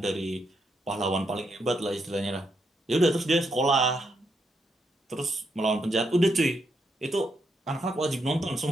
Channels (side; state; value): both; normal; correlation 0.79